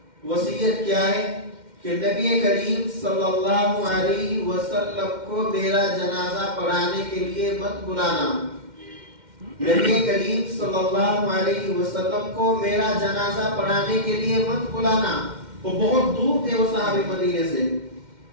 وصیت کیا ہے کہ نبی کریم صلی اللہ علیہ وسلم کو میرا جنازہ پڑھانے کے لیے مت بلانا، نبی کریم صلی اللہ علیہ وسلم کو میرا جنازہ پڑھانے کے لیے مت بلانا۔ وہ بہت دور تھے وہ صحابی مدینے سے۔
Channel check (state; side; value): late; left; 2.1 ms